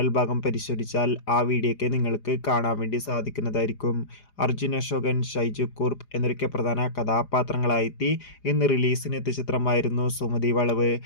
ഭാഗം പരിശോധിച്ചാൽ ആ വീഡിയോയ്ക്ക് നിങ്ങൾക്ക് കാണാൻ വേണ്ടി സാധിക്കുന്നതായിരിക്കും. അർജുൻ അശോകൻ, ഷൈജു കുർപ്പ് എന്നൊക്കെ പ്രധാന കഥാപാത്രങ്ങളായെത്തി ഇന്ന് റിലീസിനെത്തിയ ചിത്രമായിരുന്നു സുമതി വളവ്.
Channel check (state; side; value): late; right; 4.9 ms